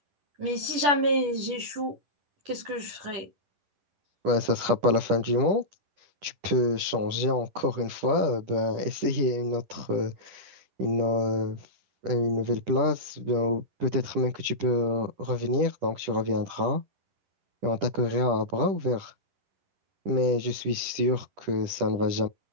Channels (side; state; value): left; late; 10 ms